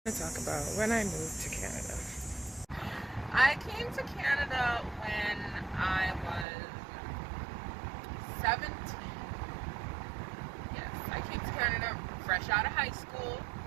I talk about when I moved to Canada. I came to Canada when I was 17. Yes, I came to Canada fresh out of high school.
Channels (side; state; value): left; drops out; at 6.5 s